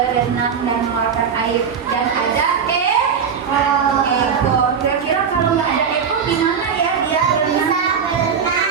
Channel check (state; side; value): quieter; left; 6.8 dB